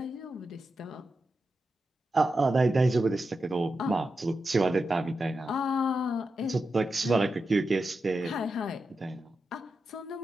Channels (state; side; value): normal; both; correlation 0.89